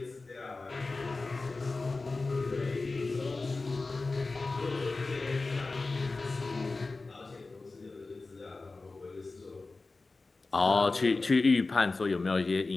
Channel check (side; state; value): right; quieter; 3.6 dB